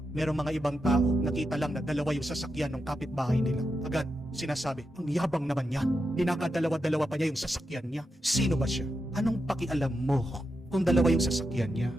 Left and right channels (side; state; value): both; normal; correlation 0.86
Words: merong mga ibang tao, nakita lang na dalawa yung sasakyan ng kapitbahay nila. Agad, sinasabi, ang yabang naman niya. Dinakadalawa-dalawa pa niya yung sasakyan niya. Sino ba siya? Anong pakialam mo kung dalawa yung sasakyan niya?